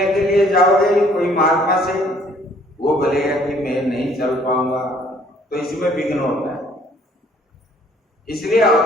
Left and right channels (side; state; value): both; normal; correlation 0.60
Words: के लिए जाओगे? कोई महात्मा से, वो बोलेगा कि मैं नहीं चल पाऊंगा, तो इसमें विघ्न होता है। इसलिए